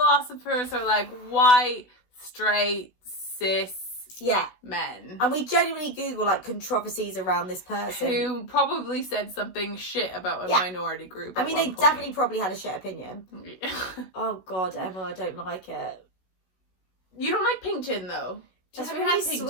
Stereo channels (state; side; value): late; right; 16 ms